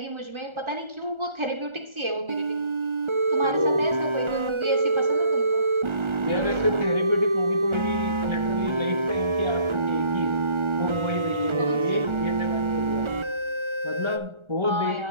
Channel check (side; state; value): left; late; 1.3 ms